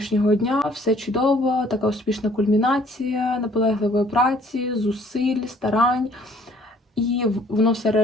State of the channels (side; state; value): both; normal; correlation 0.59